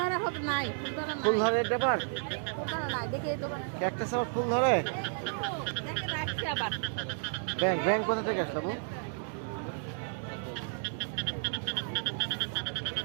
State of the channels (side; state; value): left; silent; digital silence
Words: হবে নাই, ফুল ধরে ব্যাপার ফুল ধরা নাই, দেখে এই দোকানে ক্যাকটাস আবার ফুল ধরে। দেখে রাখছি আবার। ব্যাংক ব্যাংক কোথা থেকে আসলো বাবু?